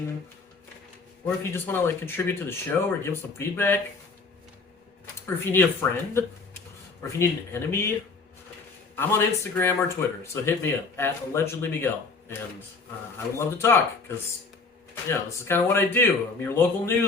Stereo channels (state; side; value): quieter; right; 4.3 dB